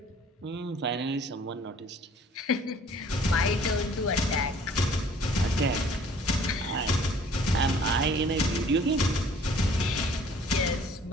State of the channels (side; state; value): both; normal; correlation 0.54